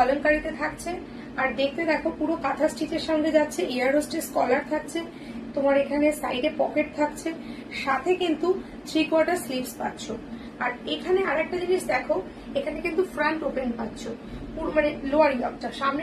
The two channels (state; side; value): identical; both; correlation 1.00